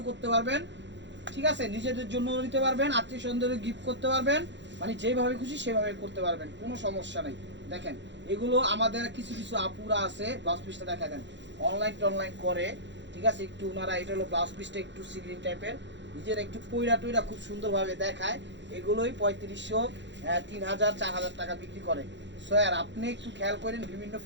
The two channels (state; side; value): late; left; 0.52 ms